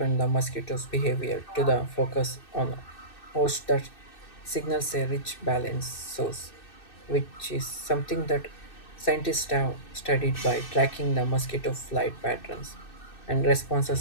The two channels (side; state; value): right; late; 2.6 ms